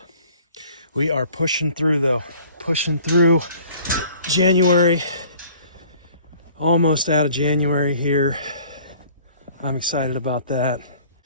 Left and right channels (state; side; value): inverted; both; correlation -0.52